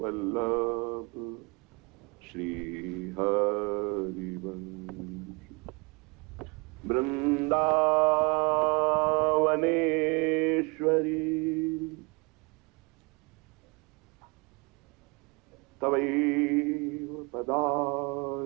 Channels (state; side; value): quieter; left; 29.5 dB